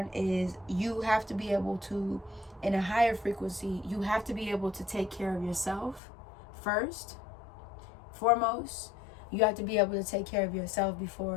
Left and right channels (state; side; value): drops out; right; at 6.0 s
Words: is you have to be able to, in a higher frequency, you have to be able to take care of yourself first, foremost. You have to be able to take care of yourself